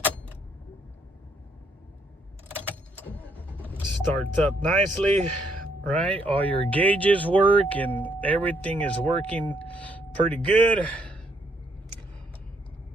Starts up nicely, right? All your gauges work and everything is working pretty good.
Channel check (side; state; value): both; normal; correlation 0.71